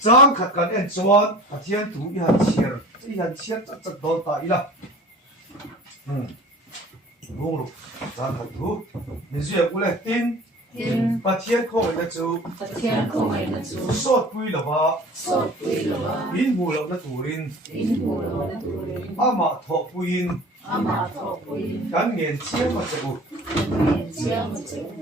khát cái em chuan phát hiện thủy ihan chiết chắc đâu tại là bung rục trang khát thủy mình duyệt cũng là tin phát hiện không ấy là chú sốt bùi là ba in mù là turin ama thọ bùi cái nghiền chiết mà chú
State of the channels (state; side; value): normal; both; correlation 0.43